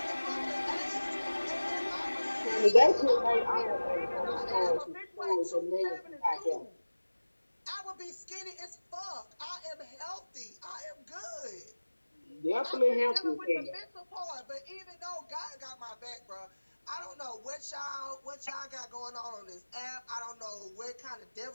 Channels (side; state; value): both; inverted; correlation -1.00